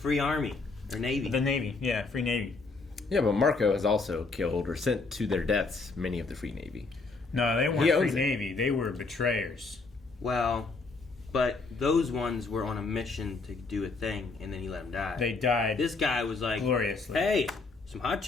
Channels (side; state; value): right; quieter; 3.9 dB